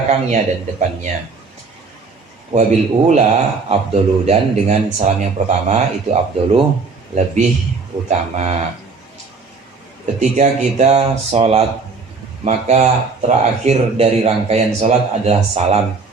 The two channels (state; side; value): quieter; left; 4.4 dB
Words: dan depannya. Wabil ula afdolu, dan dengan salam yang pertama itu afdolu, lebih utama. Ketika kita sholat, maka terakhir dari rangkaian sholat adalah salam.